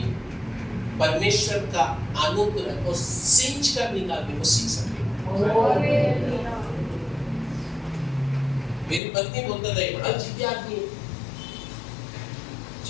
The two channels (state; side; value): drops out; right; at 9.0 s